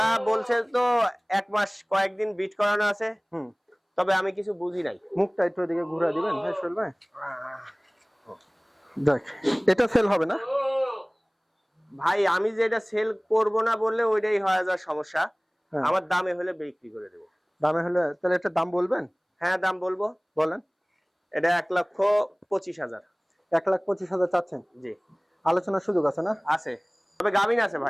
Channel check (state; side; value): identical; both; correlation 1.00